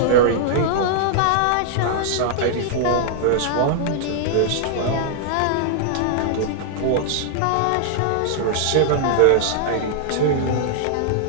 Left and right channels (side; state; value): both; different; correlation -0.01